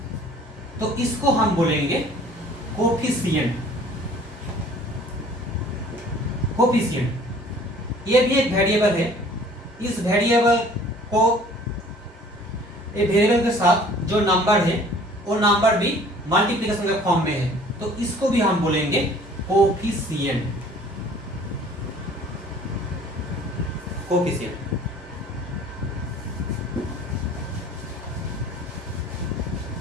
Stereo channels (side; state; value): both; normal; correlation 0.52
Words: तो इसको हम बोलेंगे कोफिशिएंट। कोफिशिएंट ये भी एक वेरिएबल है, इस वेरिएबल को वेरिएबल के साथ जो नंबर है वो नंबर भी मल्टीप्लिकेशन के फॉर्म में है तो इसको भी हम बोलेंगे कोफिशिएंट।